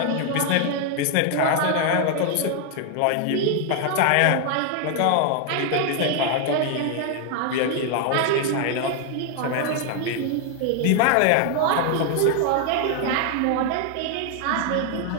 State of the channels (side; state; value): both; different; correlation 0.00